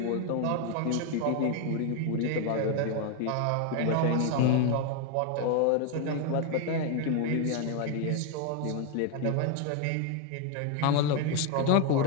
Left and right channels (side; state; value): both; different; correlation 0.01